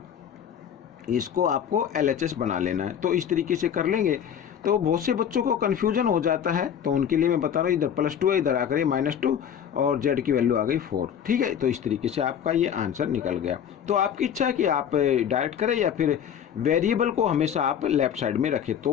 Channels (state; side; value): quieter; right; 8.8 dB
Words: इसको आपको LHS बना लेना है। तो इस तरीके से कर लेंगे तो बहुत से बच्चों को कन्फ्यूजन हो जाता है, तो उनके लिए मैं बता रहा हूँ, इधर +2 है, इधर आकर -2 और z की वैल्यू आ गई 4। ठीक है, तो इस तरीके से आपका ये आंसर निकल गया। तो आपकी इच्छा है कि आप डायरेक्ट करें या फिर वेरिएबल को हमेशा आप लेफ्ट साइड में रखें,